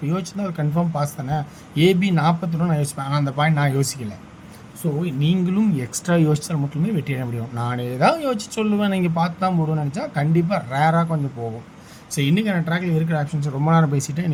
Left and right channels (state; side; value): identical; both; correlation 1.00